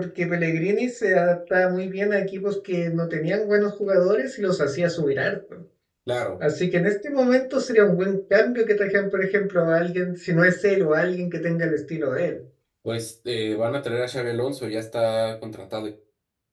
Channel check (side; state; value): both; identical; correlation 1.00